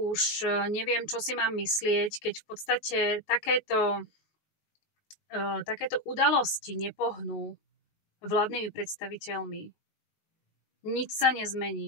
neviem, čo si mám myslieť, keď v podstate takéto udalosti nepohnú vládnymi predstaviteľmi. Nič sa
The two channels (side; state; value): right; late; 19 ms